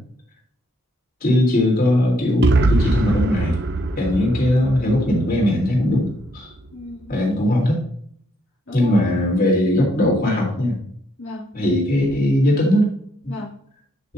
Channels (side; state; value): both; normal; correlation 0.73